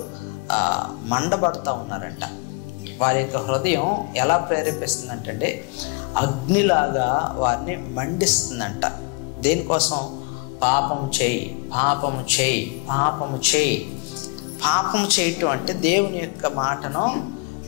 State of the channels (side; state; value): right; quieter; 29.6 dB